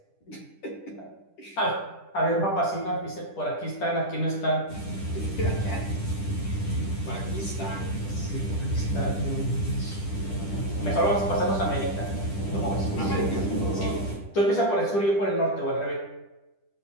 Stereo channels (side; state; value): right; late; 10 ms